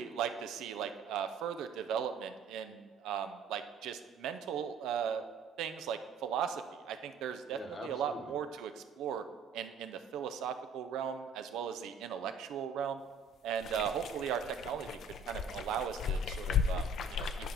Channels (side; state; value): left; quieter; 3.3 dB